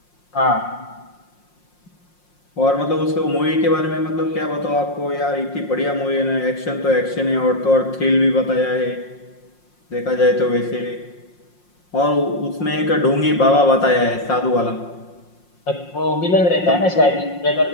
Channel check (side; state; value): right; late; 5.6 ms